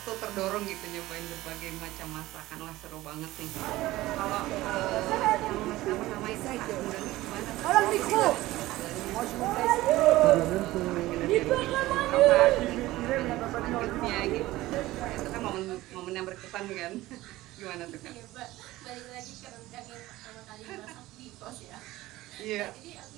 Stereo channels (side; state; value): left; quieter; 17.3 dB